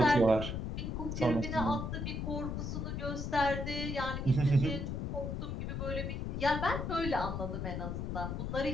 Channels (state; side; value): noise; left; rumble, 3 dB below the sound